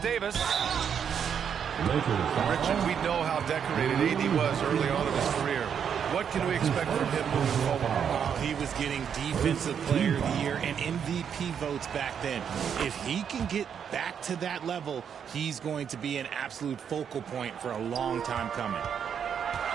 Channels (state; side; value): quieter; left; 7.8 dB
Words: Richard, we know how decorated AD was early on in his career. What can we expect from him moving forward? He was getting Defensive Player of the Year and MVP votes back then. If he can get back to that level, he's going to be an absolute focal point for a long time coming.